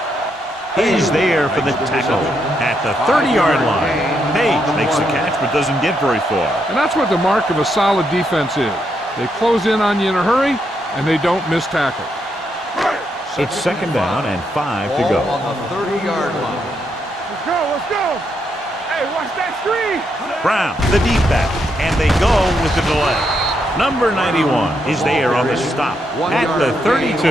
is there for the tackle at the 30-yard line. Page makes the catch but doesn't get very far. And that's what the mark of a solid defense is. They close in on you in a hurry, and they don't miss tackle. It's second down and 5 to go. Ball on the 30-yard line. Let's go, let's go. Hey, watch that screen. Brown, the deep back, and they go with the delay. Number 91 is there on the stop at the 32.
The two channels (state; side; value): normal; both; correlation 0.79